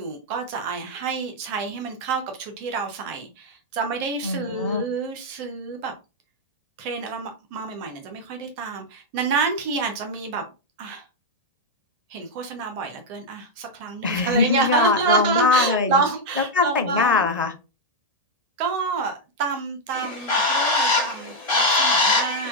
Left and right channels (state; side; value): late; left; 1.7 ms